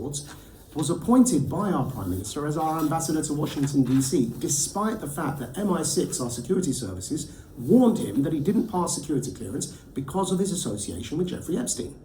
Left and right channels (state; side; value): identical; both; correlation 1.00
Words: was appointed by our prime minister as our ambassador to Washington, D.C., despite the fact that MI6, our security services, warned him that he didn't pass security clearance because of his association with Jeffrey Epstein.